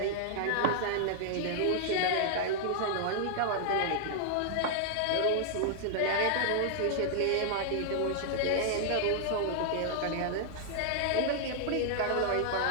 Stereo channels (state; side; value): different; both; correlation -0.01